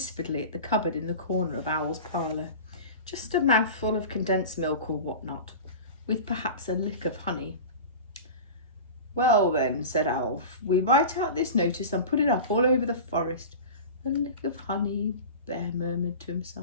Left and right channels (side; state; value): both; inverted; correlation -0.32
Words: at the cupboard in the corner of Owl's parlour. "Just a mouthful of condensed milk or what not, with perhaps a lick of honey." "Well then," said Owl, "we write out this notice and put it up all over the forest." "A lick of honey," Bear murmured to